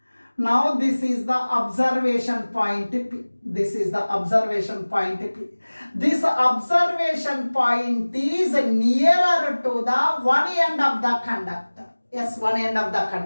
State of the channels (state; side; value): inverted; both; correlation -1.00